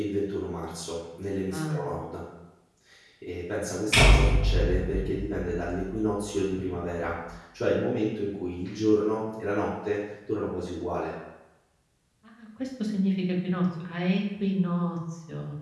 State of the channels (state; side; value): identical; both; correlation 1.00